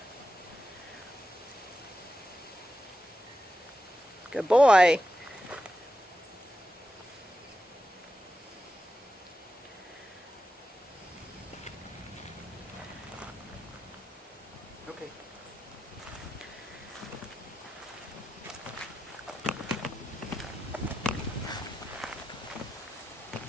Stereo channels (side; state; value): both; normal; correlation 0.88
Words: Good boy. Okay.